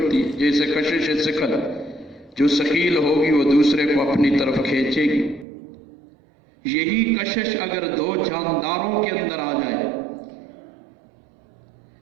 ہے، جیسے کشش ثقل، جو ثقیل ہوگی وہ دوسرے کو اپنی طرف کھینچے گی۔ یہی کشش اگر دو جانداروں کے اندر آ جائے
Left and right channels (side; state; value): left; drops out; at 5.5 s